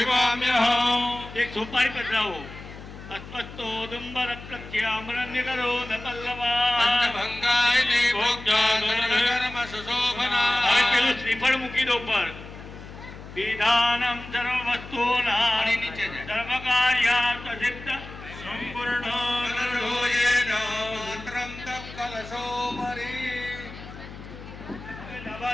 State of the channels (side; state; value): left; noise; hum, 14 dB below the sound